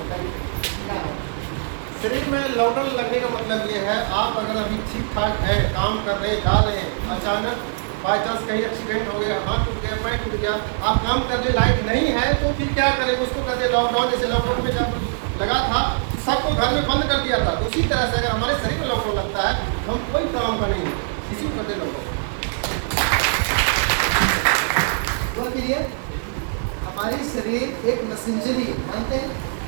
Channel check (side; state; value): left; silent; 64 dB below the other